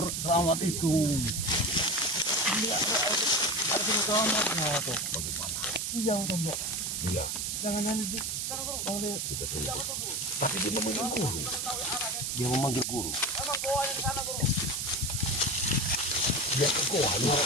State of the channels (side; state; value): right; noise; hiss, 1 dB below the sound